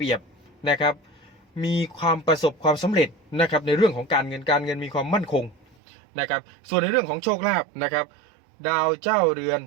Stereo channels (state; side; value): drops out; left; at 5.8 s